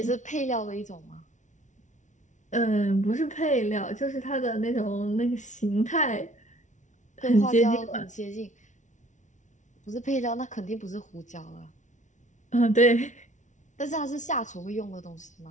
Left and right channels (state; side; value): late; right; 0.36 ms